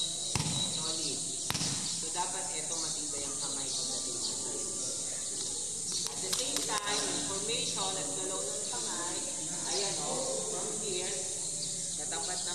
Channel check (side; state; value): both; identical; correlation 1.00